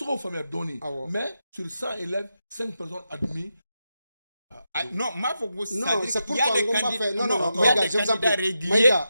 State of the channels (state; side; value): inverted; both; correlation -0.87